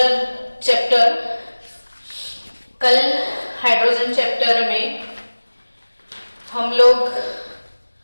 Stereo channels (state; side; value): inverted; both; correlation -1.00